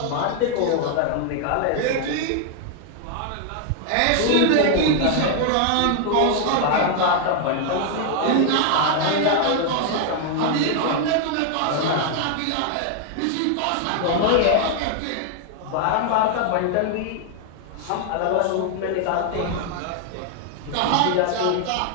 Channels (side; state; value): both; different; correlation 0.00